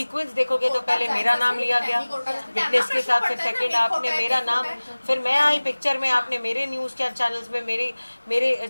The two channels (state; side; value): inverted; both; correlation -1.00